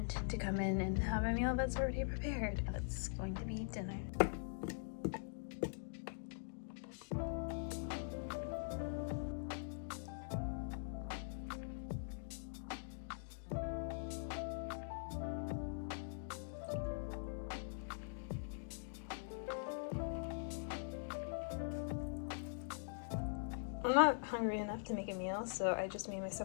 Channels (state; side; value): silent; right; digital silence